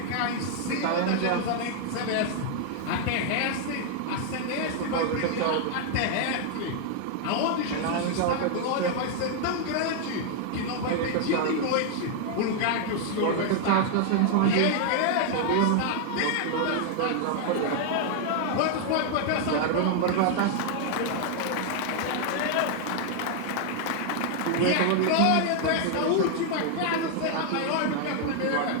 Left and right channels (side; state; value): both; different; correlation 0.00